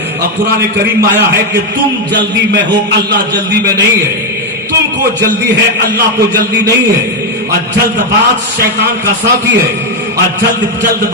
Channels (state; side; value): normal; both; correlation 0.04